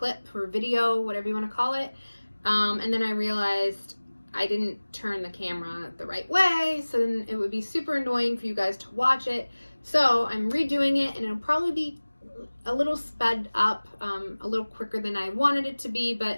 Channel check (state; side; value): inverted; both; correlation -1.00